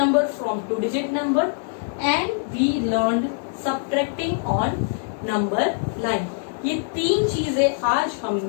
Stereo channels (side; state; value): right; silent; digital silence